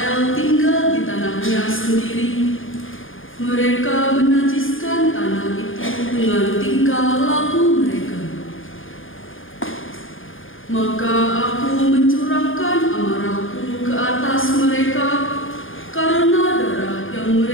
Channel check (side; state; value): right; late; 0.58 ms